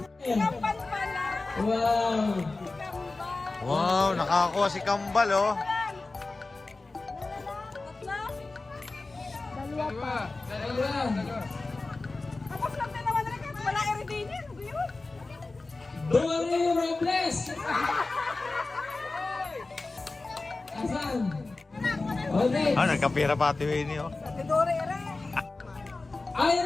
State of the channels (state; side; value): quieter; right; 3.4 dB